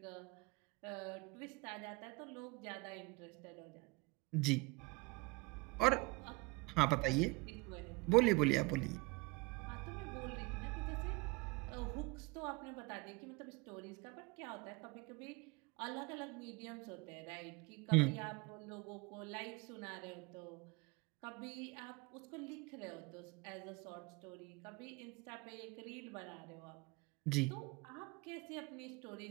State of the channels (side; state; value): left; quieter; 25.1 dB